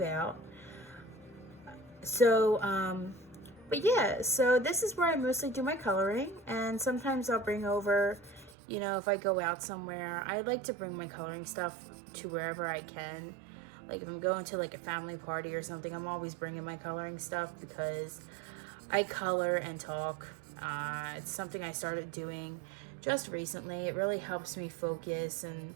out. So but yeah, so this is where I mostly do my coloring, and sometimes I'll bring over, you know, if I go out somewhere, I like to bring my coloring stuff to wherever I can. Like if I'm going to like a family party or something, I'm always bringing my coloring stuff, because I color and talk. It's something I started doing just recently. It really helps me focus and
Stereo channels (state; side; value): drops out; left; at 8.6 s